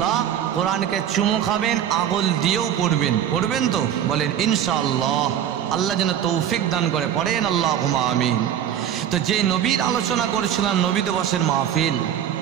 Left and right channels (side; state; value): left; quieter; 9.9 dB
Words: কোরআনকে চুমু খাবেন, আঙুল দিয়েও পড়বেন। পড়বেন তো? বলেন ইনশাআল্লাহ। আল্লাহ যেন তৌফিক দান করে, পড়েন আল্লাহুম্মা আমিন। তো যে নবীর আলোচনা করেছিলাম, নবী দিবসের মাহফিল,